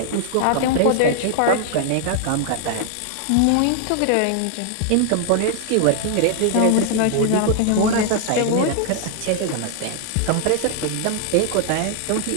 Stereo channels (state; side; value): different; both; correlation 0.00